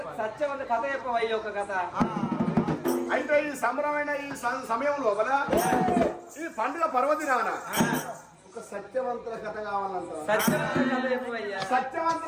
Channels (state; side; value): identical; both; correlation 1.00